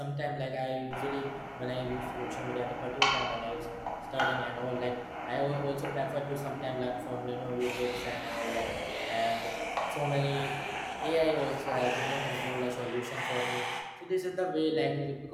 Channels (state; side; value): identical; both; correlation 1.00